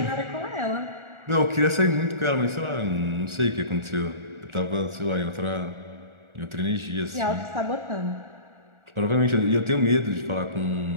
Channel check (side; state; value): left; late; 1.4 ms